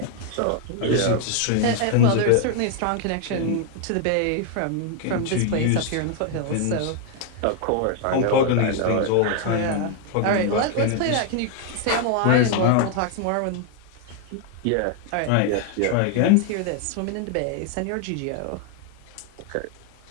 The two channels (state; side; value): different; both; correlation 0.00